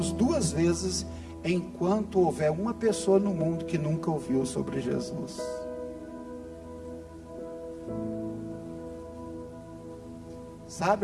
2 vezes enquanto houver uma pessoa no mundo que nunca ouviu sobre Jesus.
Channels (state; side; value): identical; both; correlation 1.00